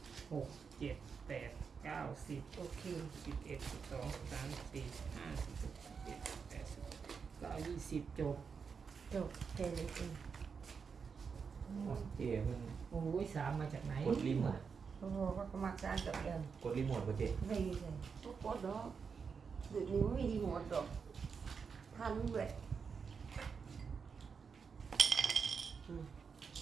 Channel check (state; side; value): quieter; left; 5.8 dB